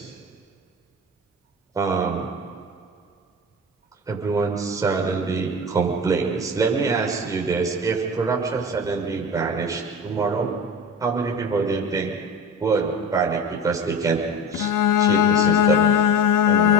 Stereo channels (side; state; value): both; normal; correlation 0.29